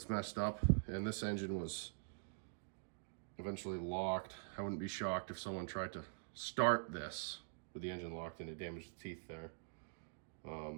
messed up, and this engine was eventually locked. I wouldn't be shocked if someone tried to start this with the engine locked and it damaged the teeth there.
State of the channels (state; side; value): silent; left; digital silence